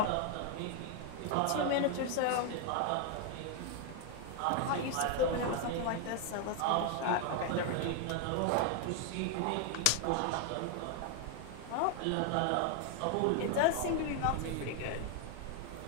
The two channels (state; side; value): different; both; correlation 0.01